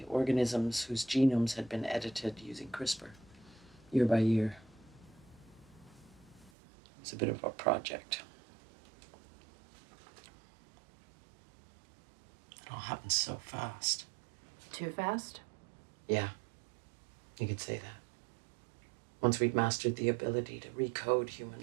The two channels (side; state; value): left; drops out; at 6.5 s